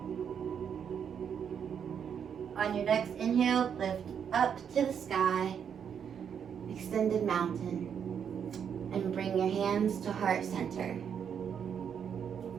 On your next inhale, lift up to the sky, extended mountain, and bring your hands to heart center.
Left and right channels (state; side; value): quieter; left; 7.7 dB